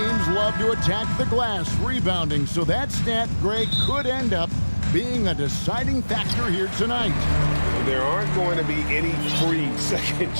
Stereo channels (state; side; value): inverted; both; correlation -1.00